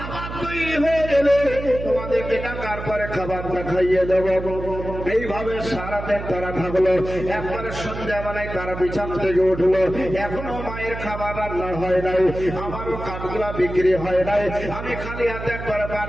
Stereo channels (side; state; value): right; noise; hum, 8 dB below the sound